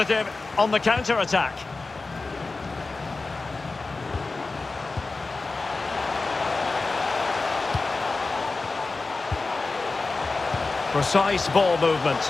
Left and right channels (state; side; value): quieter; right; 3.7 dB